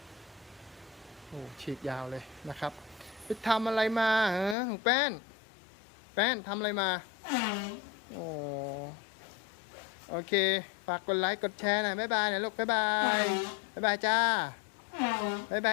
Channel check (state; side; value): drops out; right; at 4.5 s